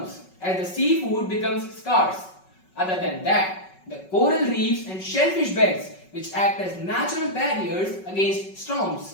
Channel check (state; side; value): late; right; 5.3 ms